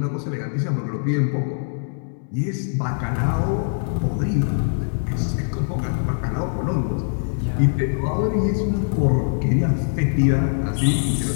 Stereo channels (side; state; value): right; silent; 64 dB below the other